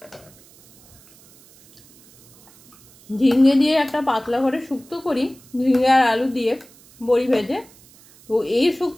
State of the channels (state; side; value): noise; right; hiss, 26 dB below the sound